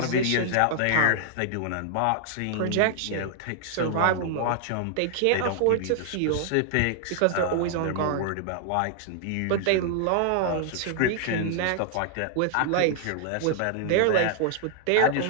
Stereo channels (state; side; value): different; both; correlation 0.00